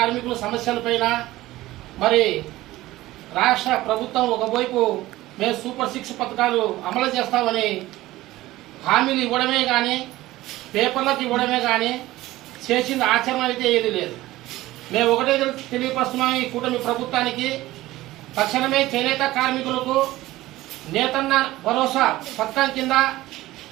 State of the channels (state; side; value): quieter; left; 17.0 dB